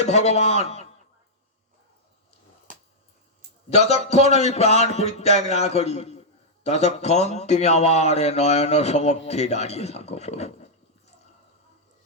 ভগবান, যতক্ষণ আমি প্রাণ পরিত্যাগ না করি ততক্ষণ তুমি আমার নয়ন সমক্ষে দাঁড়িয়ে থাকো প্রভু।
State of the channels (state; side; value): normal; both; correlation -0.07